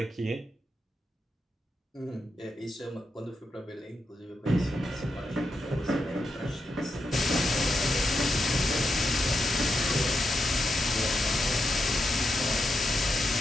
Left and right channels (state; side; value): normal; both; correlation 0.85